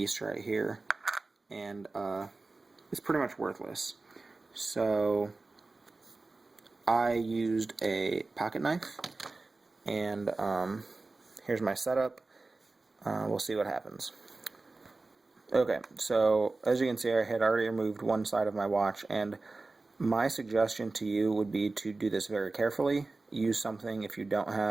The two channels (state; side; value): quieter; left; 3.5 dB